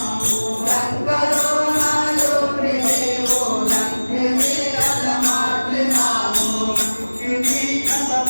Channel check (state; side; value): inverted; both; correlation -1.00